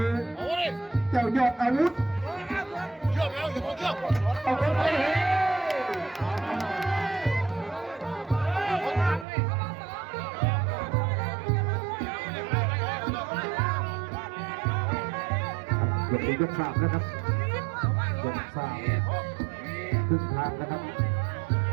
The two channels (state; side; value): drops out; left; at 9.2 s